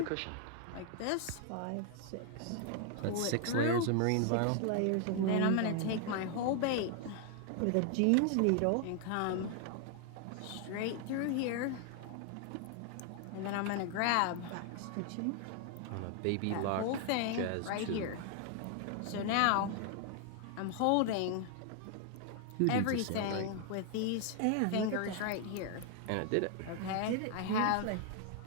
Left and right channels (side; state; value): both; different; correlation 0.00